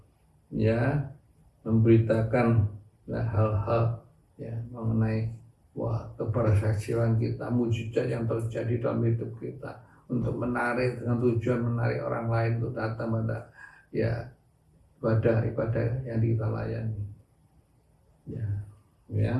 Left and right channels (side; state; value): both; identical; correlation 1.00